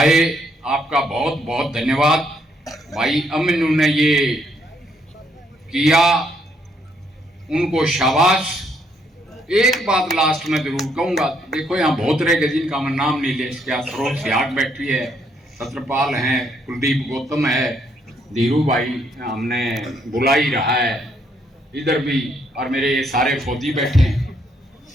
आपका बहुत बहुत धन्यवाद। भाई अमीनू ने ये किया, उनको शाबाश। एक बात लास्ट में जरूर कहूंगा, देखो यहाँ बहुत रह गए जिनका मैं नाम नहीं ले सका। सरोज सियाग बैठी है, छत्रपाल हैं, कुलदीप गौतम है, धीरू भाई हमने बुला ही रहा है इधर भी, और मेरे ये सारे फौजी बैठे हैं।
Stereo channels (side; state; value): both; normal; correlation 0.72